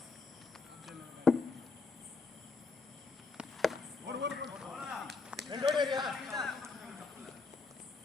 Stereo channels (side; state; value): right; quieter; 4.3 dB